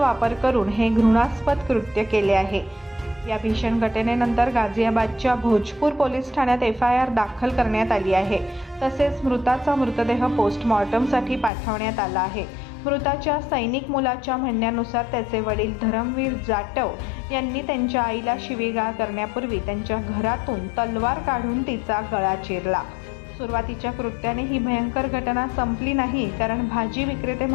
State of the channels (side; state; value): right; drops out; at 11.5 s